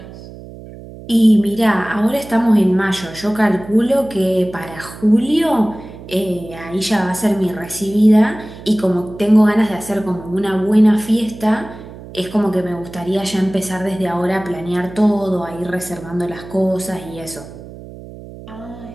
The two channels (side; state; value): right; noise; hum, 16 dB below the sound